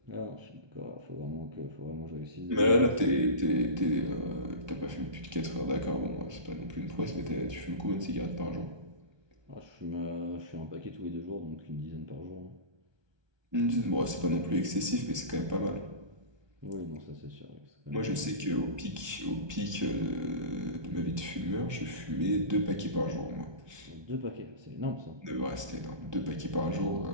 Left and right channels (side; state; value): left; late; 1.2 ms